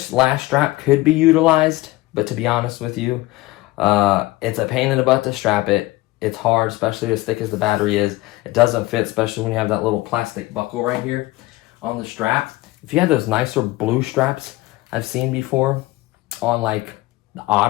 last strap could be utilized, but to be honest with you, it's a pain in the butt to strap it. It's hard, especially as thick as the battery is. It doesn't fit, especially when you have that little plastic buckle right here on the strap. If you have those nicer blue straps I've seen before on like the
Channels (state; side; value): quieter; right; 19.4 dB